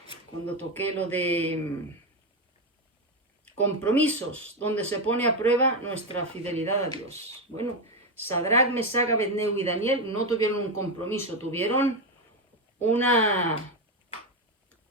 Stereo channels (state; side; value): normal; both; correlation 0.10